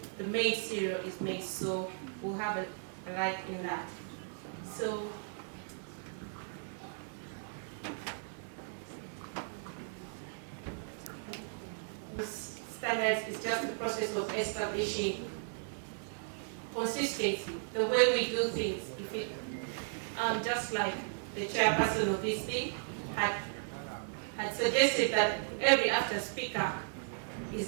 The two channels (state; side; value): silent; left; digital silence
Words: the main serial is made, so we'll have a light in that. So, standards is just the process of establishing consistency, the way we do things. If it, just like the chairperson of this thing had suggested that every after speaker